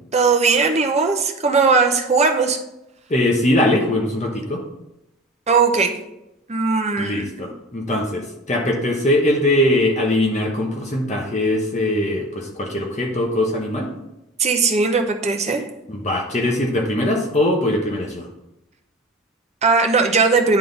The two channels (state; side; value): normal; both; correlation 0.34